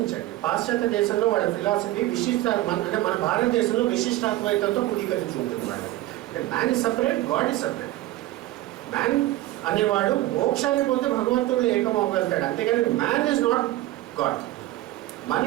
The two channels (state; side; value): quieter; left; 16.2 dB